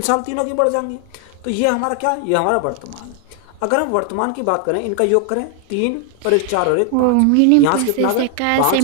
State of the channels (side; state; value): both; different; correlation 0.00